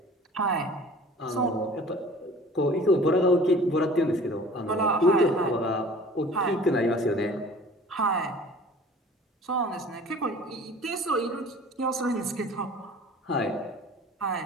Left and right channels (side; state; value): both; normal; correlation 0.46